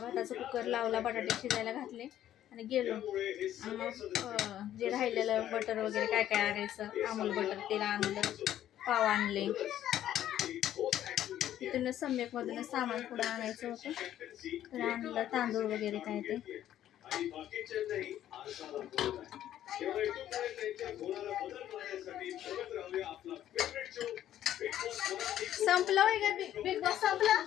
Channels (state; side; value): quieter; right; 11.8 dB